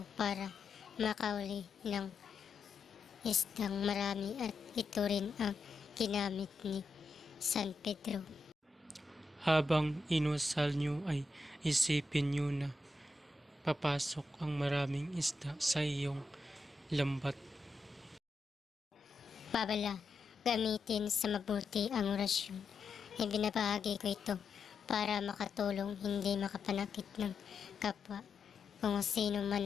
para makauli ng isdang marami, at ito rin ang ginamit ni San Pedro. Habang inusal nyo ay isipin nyo na papasok ang maraming isda sa iyong lambat. Babala, gamitin sa mabuti ang orasyon. Ibinabahagi ko ito para makatulong, hindi makapanakit ng kapwa. Kung sino man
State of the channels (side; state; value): right; quieter; 3.2 dB